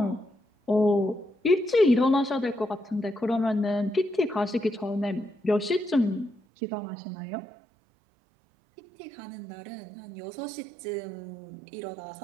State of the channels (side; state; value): left; drops out; at 6.4 s